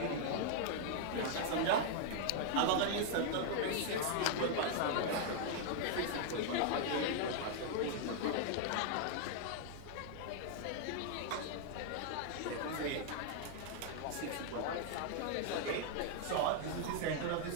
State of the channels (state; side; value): different; both; correlation 0.00